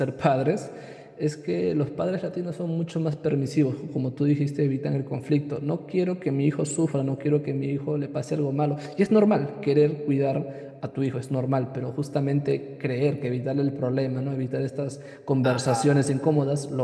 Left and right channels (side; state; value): both; identical; correlation 1.00